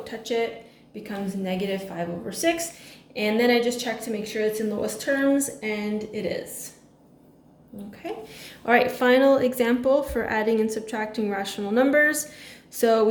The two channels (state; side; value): identical; both; correlation 1.00